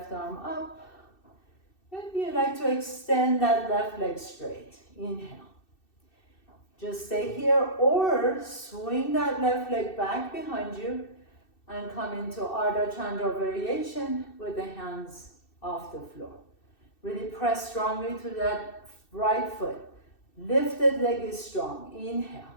arm up. Maybe you like to extend that left leg straight. Inhale. Just stay here or swing that left leg back behind you and come into Ardha Chandra variation with the hands off the floor. Really press strongly to that right foot. Lifted leg is strong. Inhale.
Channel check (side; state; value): right; late; 2.6 ms